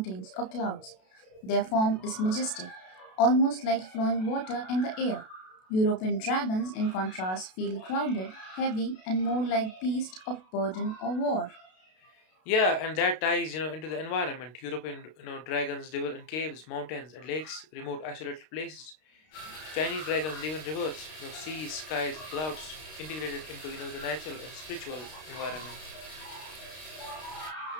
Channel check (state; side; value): late; right; 32 ms